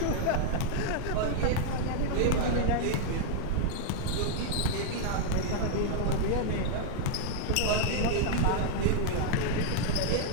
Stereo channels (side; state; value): both; different; correlation 0.00